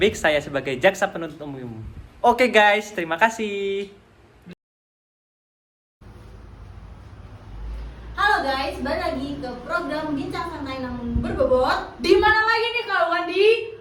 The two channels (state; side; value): identical; both; correlation 1.00